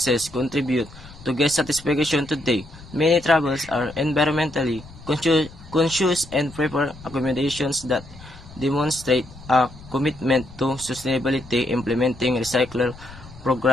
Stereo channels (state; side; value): noise; left; rumble, 19 dB below the sound